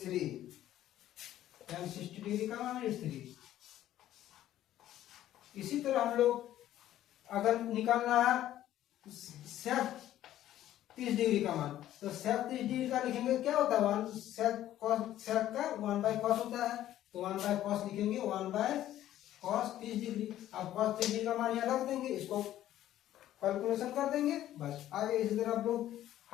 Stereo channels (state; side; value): quieter; right; 12.9 dB